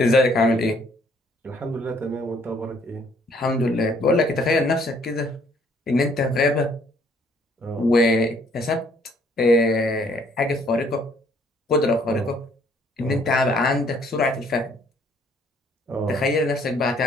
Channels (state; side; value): normal; both; correlation 0.63